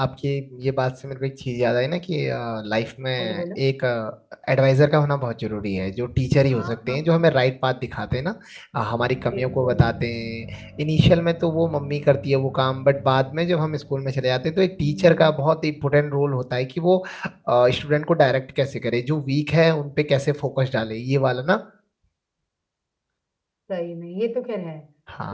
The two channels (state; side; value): identical; both; correlation 1.00